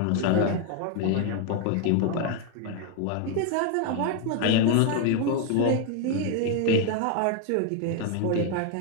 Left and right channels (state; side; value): different; both; correlation 0.01